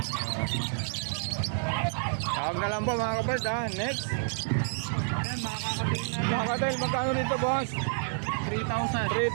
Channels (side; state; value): left; silent; 58 dB below the other